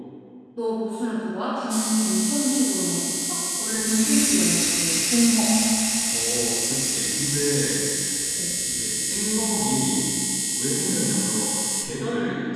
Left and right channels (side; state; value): both; identical; correlation 1.00